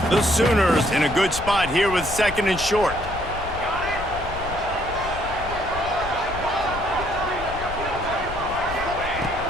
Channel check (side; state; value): left; noise; rumble, 11 dB below the sound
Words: The Sooners in a good spot here with second and short.